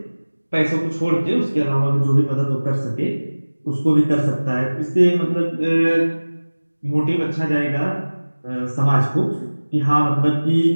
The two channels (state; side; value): inverted; both; correlation -1.00